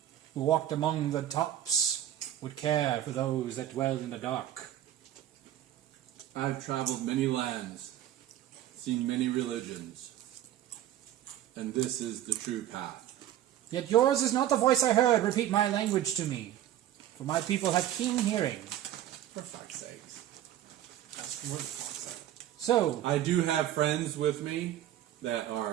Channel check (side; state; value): left; quieter; 12.1 dB